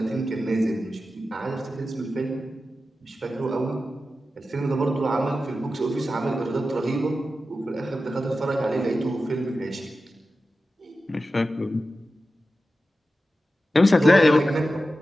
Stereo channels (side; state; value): both; normal; correlation 0.93